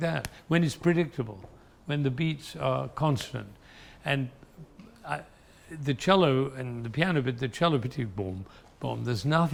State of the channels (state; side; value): identical; both; correlation 1.00